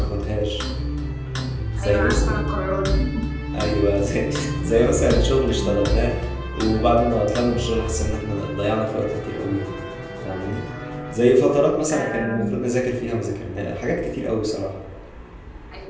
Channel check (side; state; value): both; identical; correlation 1.00